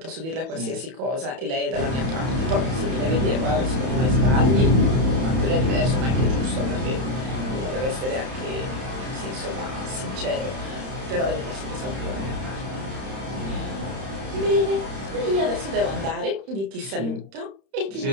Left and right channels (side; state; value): left; late; 31 ms